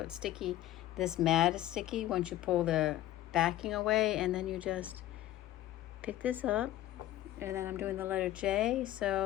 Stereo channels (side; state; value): right; quieter; 14.3 dB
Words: sticky. This mat is sticky once you pull the backing away, and then you just pick this up. And then I'm doing the letter J,